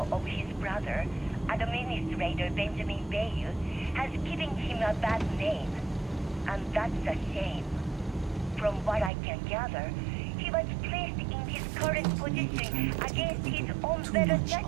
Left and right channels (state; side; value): drops out; left; at 9.1 s